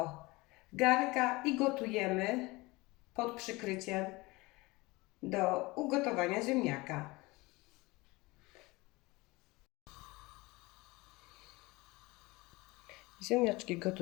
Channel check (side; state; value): right; quieter; 22.7 dB